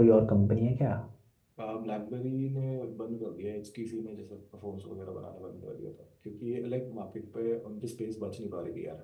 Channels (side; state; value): both; identical; correlation 1.00